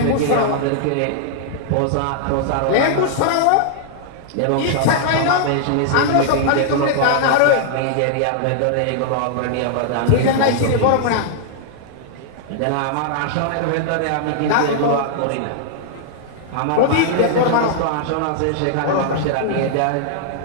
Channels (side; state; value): both; different; correlation -0.01